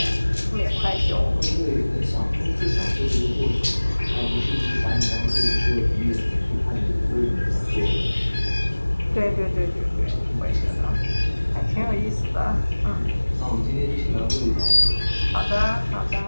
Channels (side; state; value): both; inverted; correlation -1.00